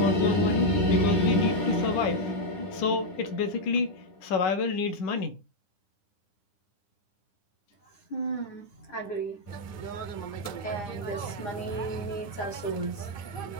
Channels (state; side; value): late; right; 9.9 ms